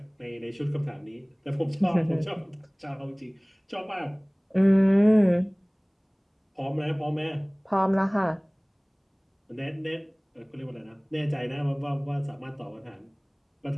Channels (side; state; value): both; identical; correlation 1.00